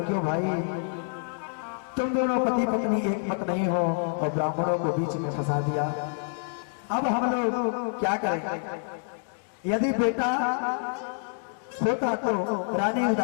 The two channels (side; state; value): right; silent; digital silence